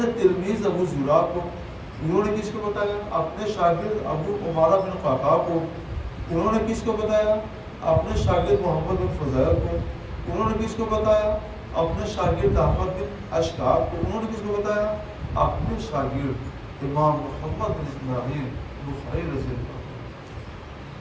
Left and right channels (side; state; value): both; identical; correlation 1.00